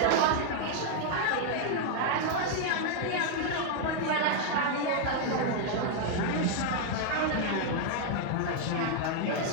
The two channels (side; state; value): both; different; correlation 0.00